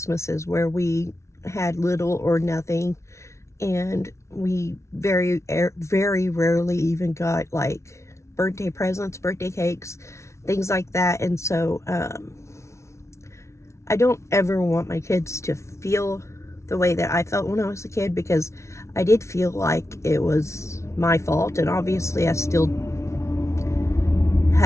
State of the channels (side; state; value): right; late; 0.13 ms